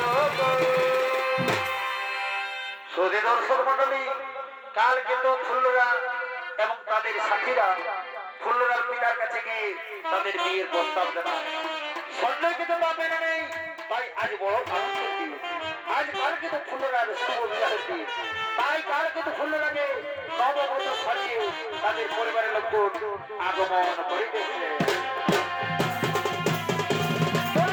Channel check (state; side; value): identical; both; correlation 1.00